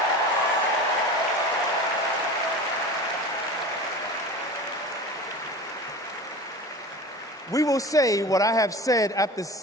We will say what I have said after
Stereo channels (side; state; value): both; normal; correlation 0.34